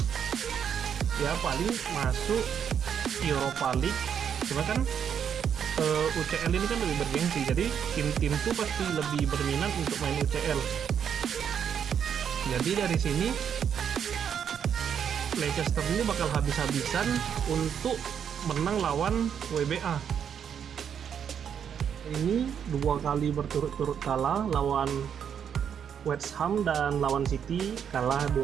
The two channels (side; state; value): left; quieter; 8.1 dB